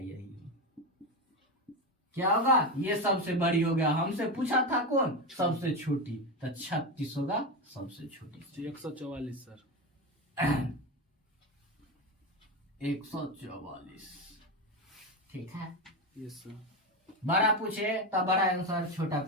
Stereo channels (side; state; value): both; normal; correlation 0.16